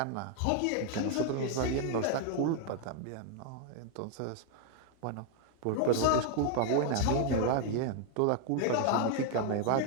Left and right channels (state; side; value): different; both; correlation 0.00